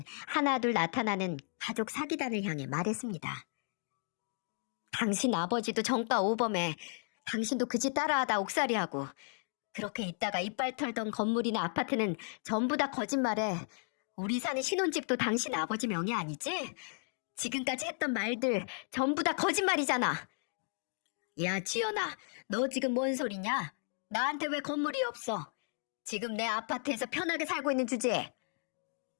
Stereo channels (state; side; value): silent; right; 55 dB below the other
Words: 하나둘 나타나는 가족 사기단을 향해 말했습니다. 당신 아버지도 정가 오범해. 당신도 그 짓 따라하다 옥살이하고 그렇게 있다가 이빨 털던 건물이나 아파트는 전부 다 거짓말해. 우리 사는 신혼집도 당신 아버지 명의 아니지? 지금까지 했던 말들 전부 다 거짓말이잖아. 야 지연아, 너 지금 뭔 소리냐? 나한테 왜 건물이 없어? 지금 내 아파트에서 편하게 살고 있는 주제에.